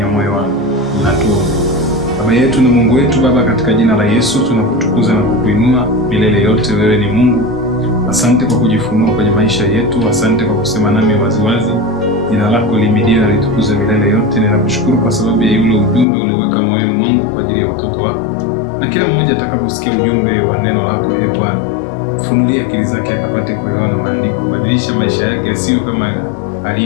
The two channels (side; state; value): right; drops out; at 16.1 s